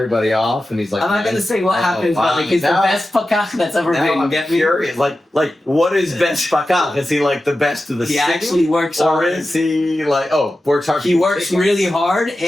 off, and he's like, I'm not gonna say what happens, but like he's the best pakach that's ever been. I'm curious. Like what is best pakach? Is he like the best of the He city? actually works or hard. is he like works hard? He works really hard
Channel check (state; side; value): normal; both; correlation 0.93